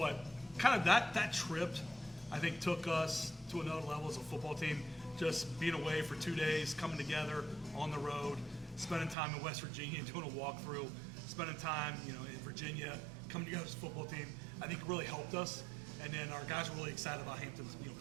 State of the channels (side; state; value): left; drops out; at 9.2 s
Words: kind of that trip, I think, took us to another level as a football team. Just being away for 2 days, coming together on the road, spending time in West Virginia, doing a walkthrough, spending time, in Virginia, coming together as a football team. I think it really helped us. And then our guys were really excited about Hampton,